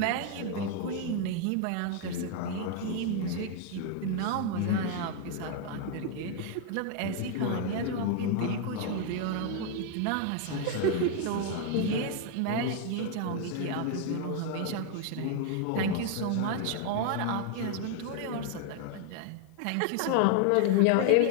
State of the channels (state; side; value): different; both; correlation 0.00